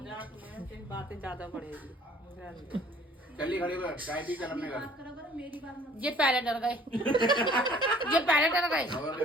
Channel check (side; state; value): both; normal; correlation 0.54